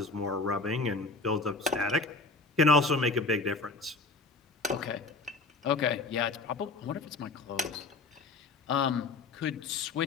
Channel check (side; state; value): right; quieter; 3.7 dB